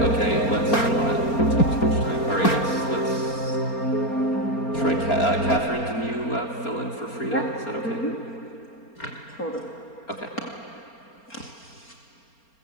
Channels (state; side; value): late; right; 4.3 ms